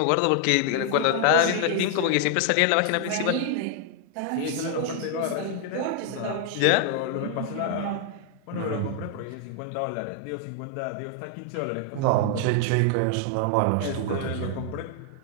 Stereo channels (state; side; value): different; both; correlation 0.00